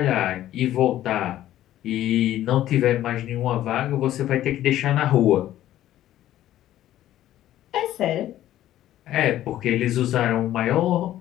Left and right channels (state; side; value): quieter; right; 13.2 dB